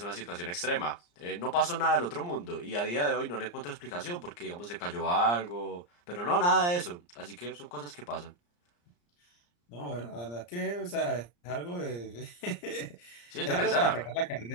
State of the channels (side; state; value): right; late; 34 ms